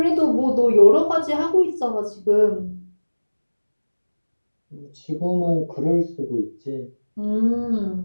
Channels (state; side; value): inverted; both; correlation -1.00